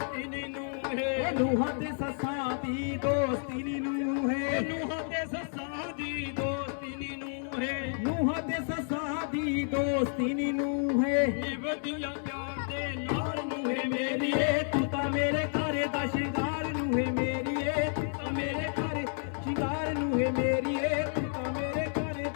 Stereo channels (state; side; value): silent; right; 57 dB below the other